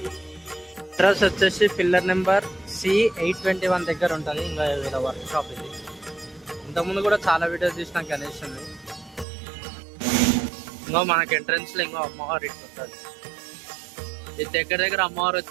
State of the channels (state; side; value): drops out; left; at 9.2 s